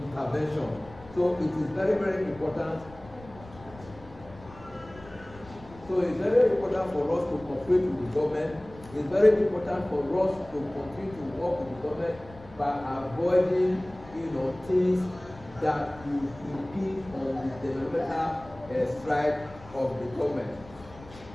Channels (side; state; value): left; noise; rumble, 20 dB below the sound